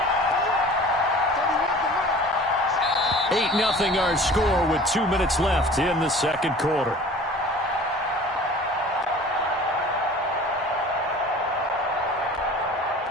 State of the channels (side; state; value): both; normal; correlation 0.44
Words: Nothing our score with 2 minutes left in the second quarter.